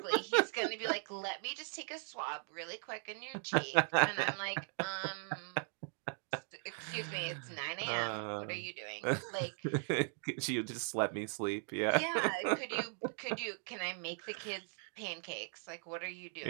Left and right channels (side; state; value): left; silent; 52 dB below the other